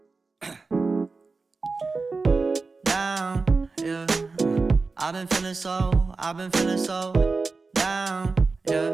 Down, yeah. I've been feeling so down,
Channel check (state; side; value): quieter; left; 4.1 dB